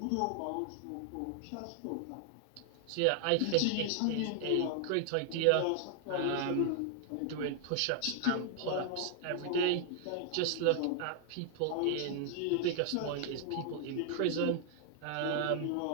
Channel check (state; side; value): different; both; correlation 0.00